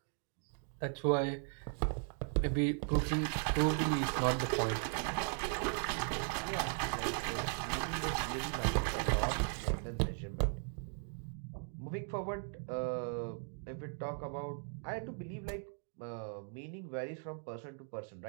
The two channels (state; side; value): silent; left; 53 dB below the other